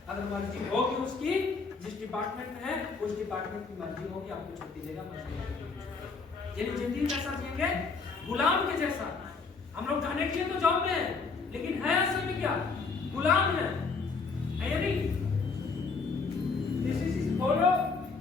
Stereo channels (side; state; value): right; quieter; 4.6 dB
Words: अगर मर्जी होगी उसकी, जिस डिपार्टमेंट में है उस डिपार्टमेंट की मर्जी होगी, आपको छुट्टी देगा। यानी जिंदगी कैसा जिएंगे? गुलाम के जैसा। हम लोग कहने के लिए तो जॉब में है, लेकिन है असल में क्या? गुलाम है या नहीं? This is follow